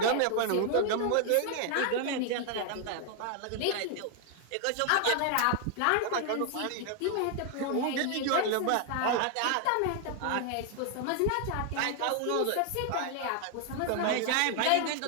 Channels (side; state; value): both; different; correlation 0.00